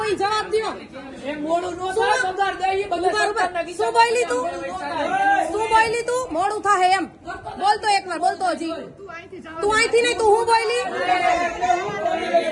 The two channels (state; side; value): identical; both; correlation 1.00